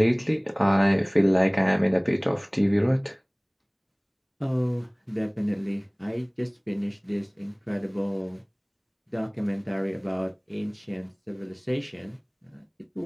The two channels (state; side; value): identical; both; correlation 1.00